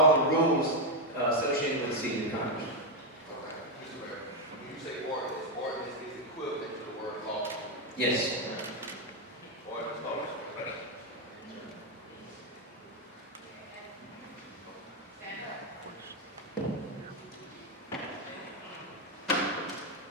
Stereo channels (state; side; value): normal; both; correlation 0.04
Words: the rules associated with the city of Conyers. Okay, Mr. Mayor, when you say ordinance is equivalent to the word law. Yes. Ordinance, law.